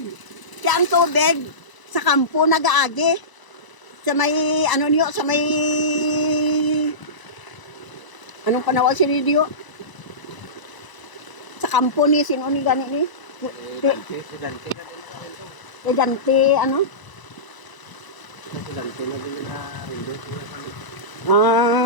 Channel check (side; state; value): right; late; 1.0 ms